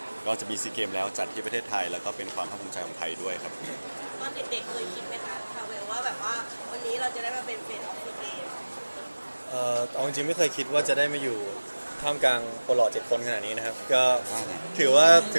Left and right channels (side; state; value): both; inverted; correlation -1.00